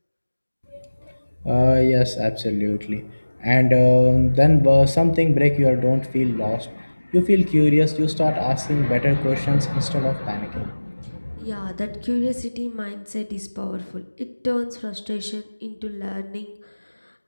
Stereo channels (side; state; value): both; inverted; correlation -1.00